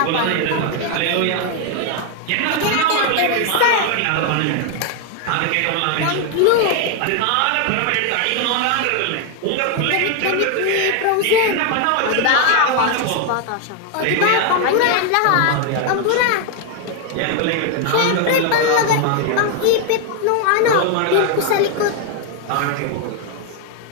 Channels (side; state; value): both; different; correlation 0.01